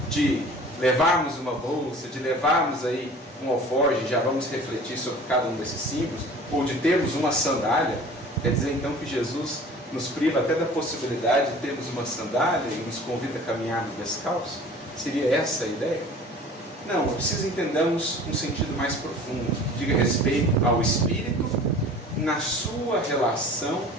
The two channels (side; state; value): both; normal; correlation 0.44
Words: de levarmos uma bolsa, de levarmos aí um alforje, já vamos refletir sobre cada um desses símbolos, ou de termos uma sandália, quer dizer então que Jesus nos priva até da possibilidade de termos uma sandália e nos convida a caminhar descalço? Seria essa a ideia? Não, é preciso entendermos um sentido mais profundo, que diga respeito ao espírito na sua relação